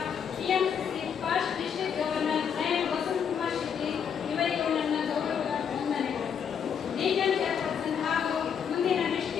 TMC first district governor lion Vasanth Kumar Shetty ಇವರಿಗೂ ನನ್ನ ಗೌರವದ ವಂದನೆಗಳು. ರೀಜನ್ ಚೇರ್ಪರ್ಸನ್ ಹಾಗೂ ಮುಂದಿನ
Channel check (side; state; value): right; quieter; 7.6 dB